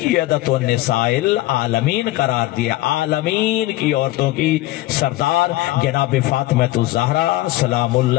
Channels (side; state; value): right; quieter; 17.3 dB